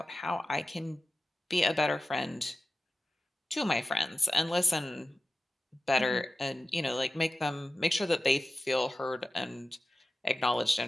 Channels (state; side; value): normal; both; correlation 0.94